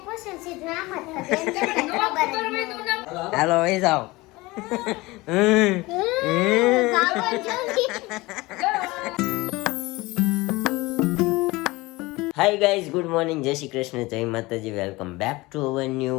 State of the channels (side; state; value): right; quieter; 21.6 dB